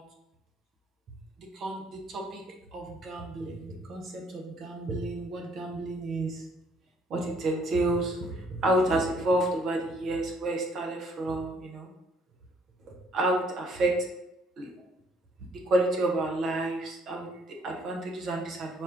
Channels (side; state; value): both; normal; correlation 0.64